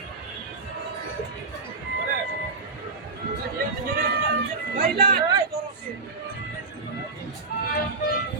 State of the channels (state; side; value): quieter; left; 3.9 dB